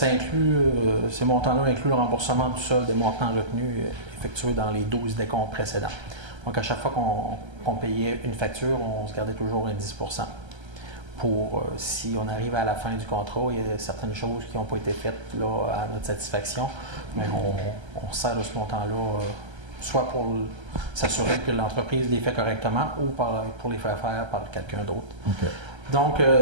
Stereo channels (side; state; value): left; late; 1.3 ms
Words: montants-là incluent le remboursement du solde des montants retenus effectués dans les 12 décomptes précédents. Donc, à chaque fois qu'on payait une facture, on se gardait toujours un 10 % pour, si on arrive à la fin du contrat, il y a certaines choses qui n'ont pas été faites là, à notre satisfaction, mais on sert de ce montant-là, soit pour s'assurer que l'entreprise les fait correctement ou pour les faire faire par quelqu'un d'autre. Okay. Donc,